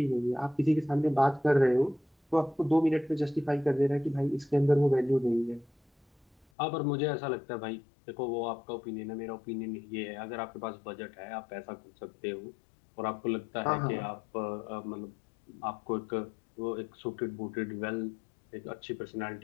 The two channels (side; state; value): right; drops out; at 6.5 s